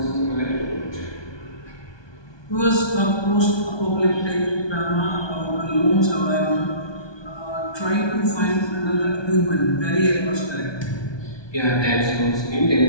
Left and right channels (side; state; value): right; late; 1.2 ms